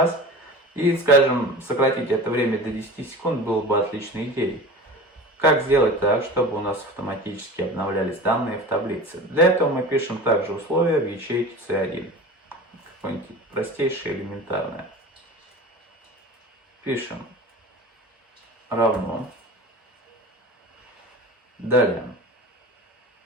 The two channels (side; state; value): both; normal; correlation 0.35